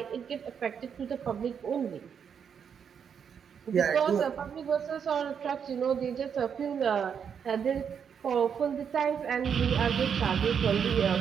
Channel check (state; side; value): quieter; left; 7.4 dB